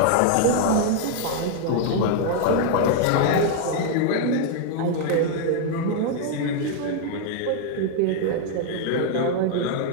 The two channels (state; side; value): different; both; correlation 0.00